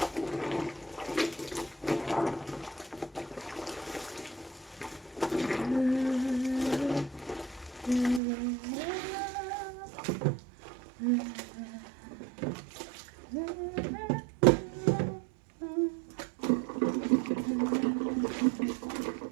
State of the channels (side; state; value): left; drops out; at 8.2 s